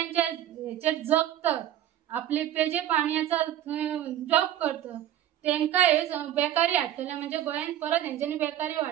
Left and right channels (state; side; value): quieter; left; 11.9 dB